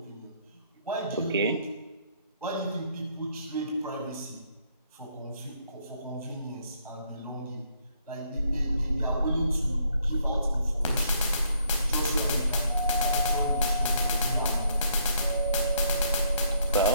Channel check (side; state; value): both; inverted; correlation -0.69